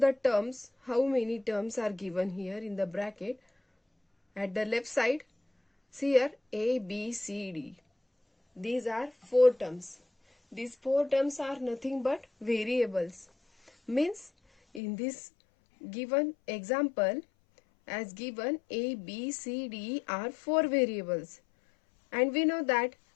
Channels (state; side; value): drops out; right; at 14.8 s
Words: terms, how many terms are given here in the bracket. At the left side, see here A, B, C, D. These are 4 terms. These 4 terms are nothing but variables. Means in this given example, as given A, B, C, D are 4 variables. And we know that